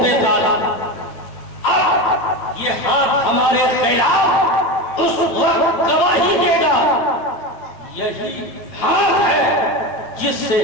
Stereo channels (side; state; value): right; late; 9.3 ms